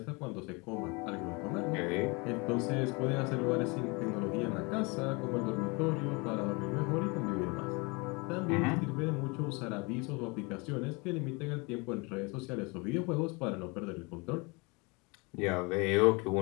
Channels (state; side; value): quieter; right; 28.6 dB